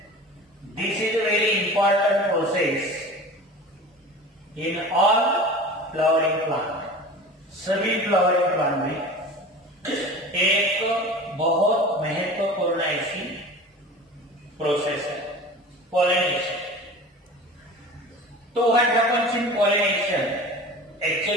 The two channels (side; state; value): both; normal; correlation 0.37